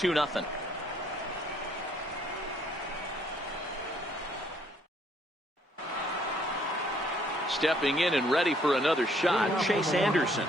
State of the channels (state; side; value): normal; both; correlation 0.65